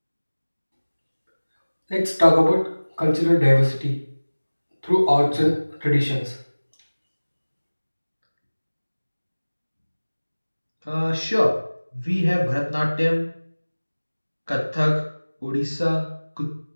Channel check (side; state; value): both; inverted; correlation -1.00